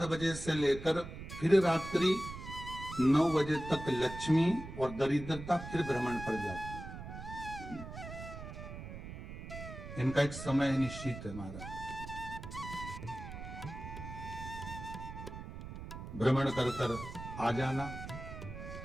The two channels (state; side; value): noise; right; rumble, 10 dB below the sound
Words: बजे से लेकर फिर रात्रि 9 बजे तक लक्ष्मी और दरिद्रता फिर भ्रमण पर जाती है। इनका एक समय निश्चित है महाराज, भ्रमण कर कर आ जाना।